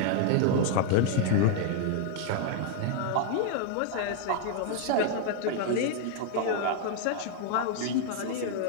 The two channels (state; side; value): different; both; correlation 0.00